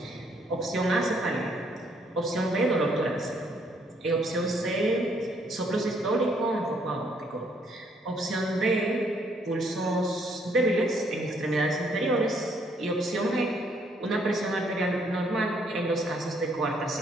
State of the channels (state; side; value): normal; both; correlation 0.68